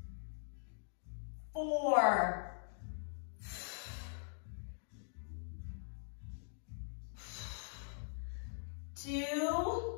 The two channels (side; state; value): right; silent; digital silence